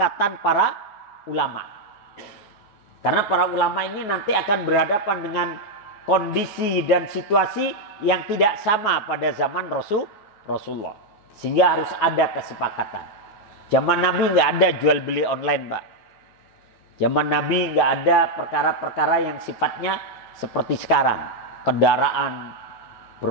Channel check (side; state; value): right; late; 9.4 ms